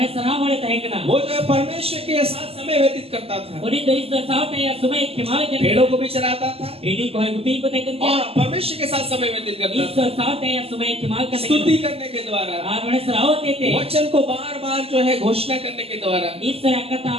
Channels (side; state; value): left; late; 0.29 ms